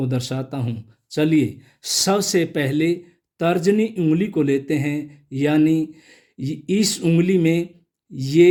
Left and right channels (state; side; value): identical; both; correlation 1.00